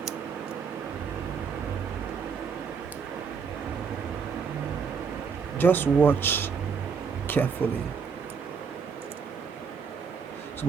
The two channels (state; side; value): quieter; left; 6.1 dB